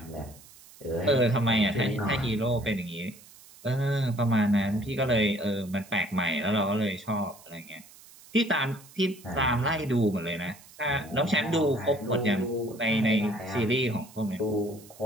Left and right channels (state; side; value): noise; right; hiss, 22 dB below the sound